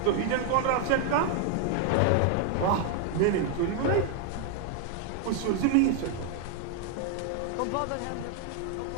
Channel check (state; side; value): different; both; correlation 0.00